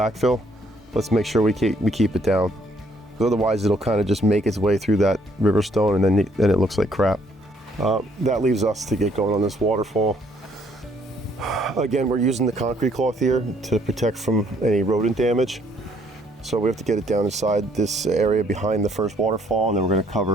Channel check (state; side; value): normal; both; correlation 0.66